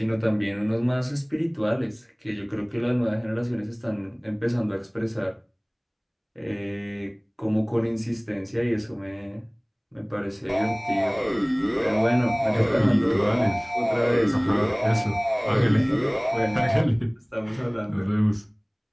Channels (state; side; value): identical; both; correlation 1.00